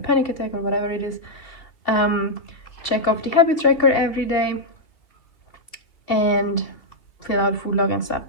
attack or whatever it is. Check off the habit tracker every day, and fill out food log and stuff.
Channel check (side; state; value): right; late; 2.8 ms